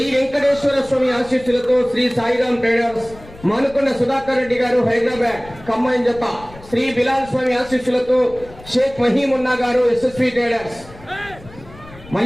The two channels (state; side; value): noise; left; rumble, 20 dB below the sound